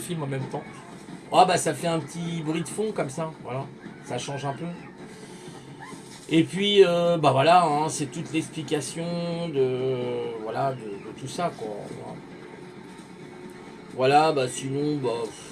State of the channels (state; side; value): identical; both; correlation 1.00